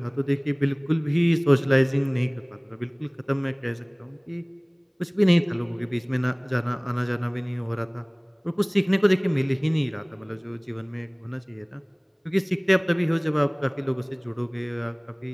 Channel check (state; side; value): identical; both; correlation 1.00